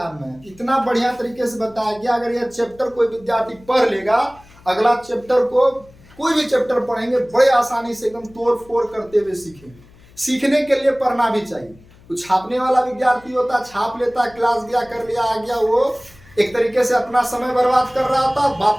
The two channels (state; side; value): noise; left; hum, 26 dB below the sound